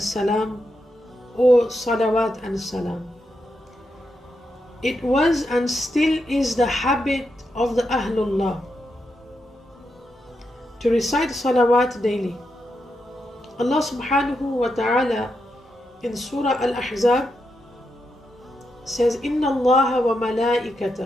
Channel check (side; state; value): both; normal; correlation 0.84